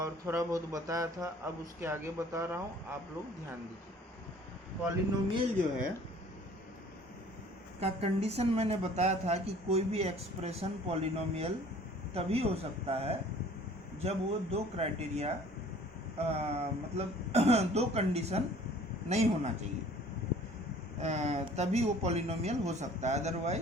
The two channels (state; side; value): normal; both; correlation 0.51